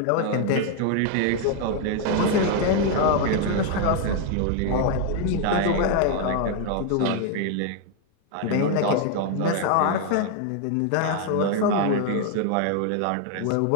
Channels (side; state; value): both; different; correlation 0.00